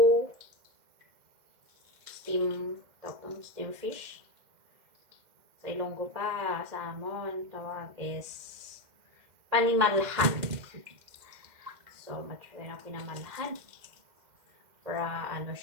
steam fish? Sa Ilonggo pa, sa Amon, tawag is panimalhan. So, matry na pinamalhan. Para ano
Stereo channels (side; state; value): left; late; 2.1 ms